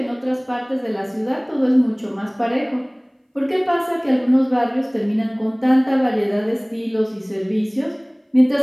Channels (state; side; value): identical; both; correlation 1.00